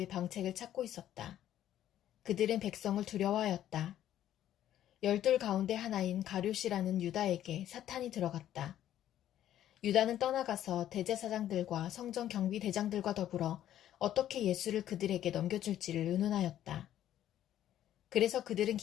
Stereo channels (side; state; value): right; quieter; 11.8 dB